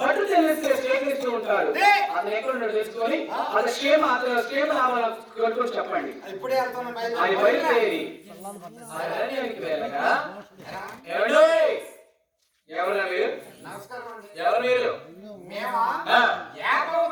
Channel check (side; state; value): both; identical; correlation 1.00